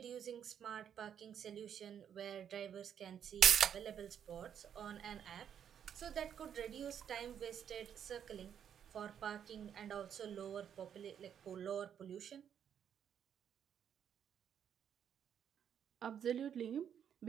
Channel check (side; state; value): left; quieter; 8.7 dB